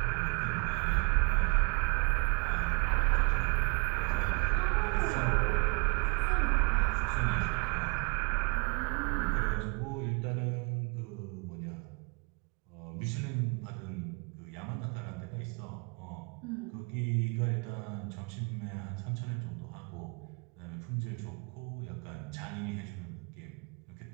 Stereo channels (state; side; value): quieter; left; 33.7 dB